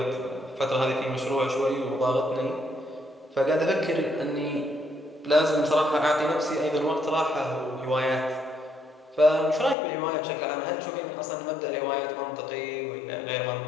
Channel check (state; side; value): drops out; right; at 9.8 s